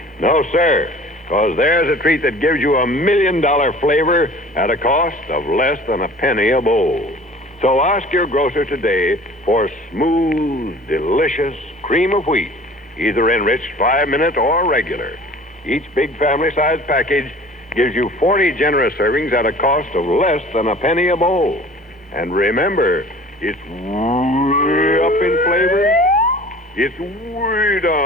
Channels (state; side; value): normal; both; correlation 0.45